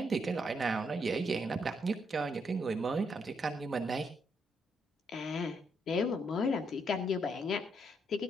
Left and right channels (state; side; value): normal; both; correlation 0.76